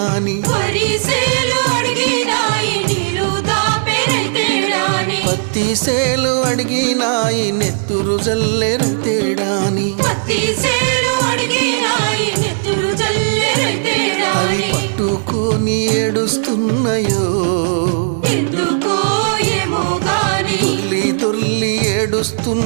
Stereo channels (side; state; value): left; silent; digital silence